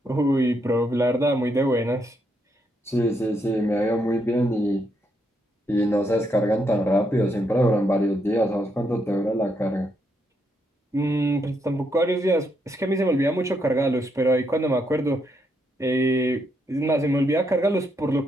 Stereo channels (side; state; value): both; normal; correlation 0.77